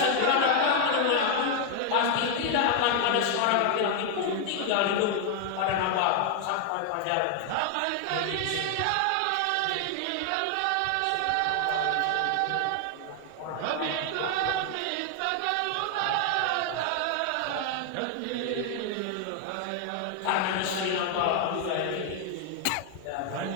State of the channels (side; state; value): both; different; correlation 0.00